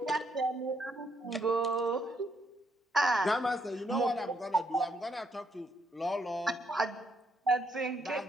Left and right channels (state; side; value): normal; both; correlation 0.74